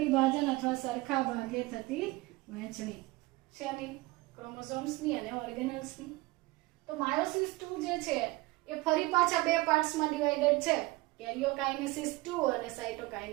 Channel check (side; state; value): left; quieter; 21.4 dB